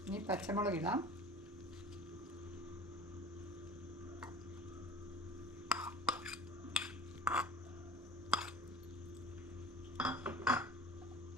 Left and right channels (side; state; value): both; normal; correlation 0.39